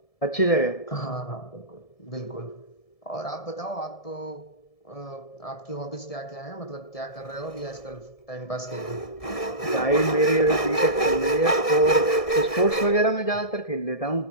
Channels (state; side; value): late; right; 1.7 ms